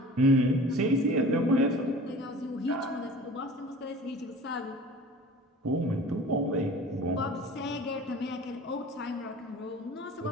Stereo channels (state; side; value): normal; both; correlation 0.42